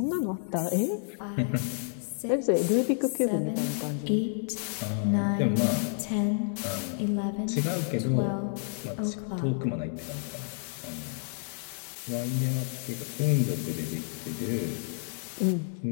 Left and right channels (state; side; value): silent; right; 58 dB below the other